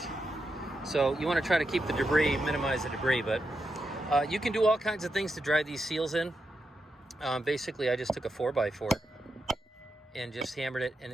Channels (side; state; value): both; normal; correlation 0.86